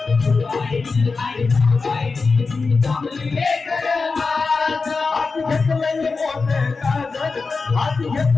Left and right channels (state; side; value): quieter; right; 4.3 dB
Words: जोगाईची आई टाकायची जमली लेकर आज घेतलंय मोठं काजल, हाती